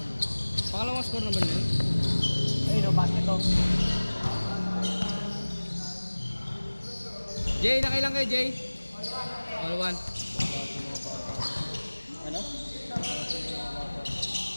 Pangalawang score naman yun? Ayun o, basketball. Jay, nakailang kayo Jay? All one. Ano?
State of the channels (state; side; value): inverted; both; correlation -1.00